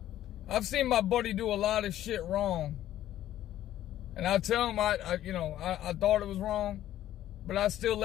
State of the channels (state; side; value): quieter; right; 12.7 dB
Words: seen my buddy do a lot of shit wrong. And I tell him, I thought it was wrong, but I still